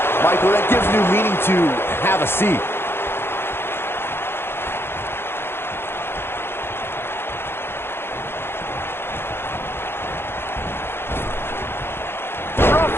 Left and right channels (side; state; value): right; late; 0.11 ms